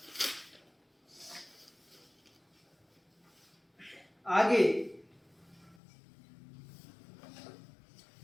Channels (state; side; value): drops out; right; at 5.8 s